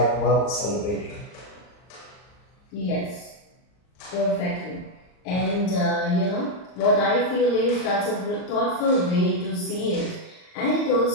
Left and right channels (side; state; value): right; late; 39 ms